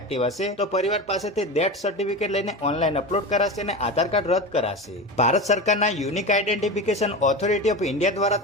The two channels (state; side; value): normal; both; correlation 0.25